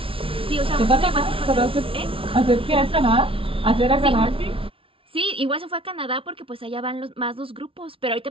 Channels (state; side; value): late; left; 0.26 ms